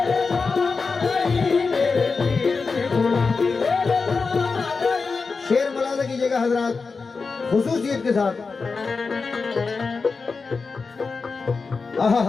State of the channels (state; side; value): quieter; right; 4.6 dB